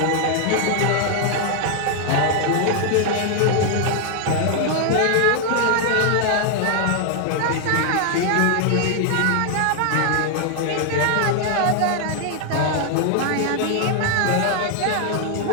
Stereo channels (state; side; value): different; both; correlation 0.00